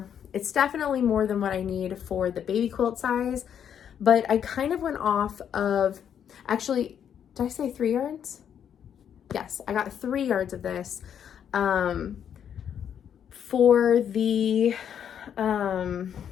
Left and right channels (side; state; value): right; quieter; 8.7 dB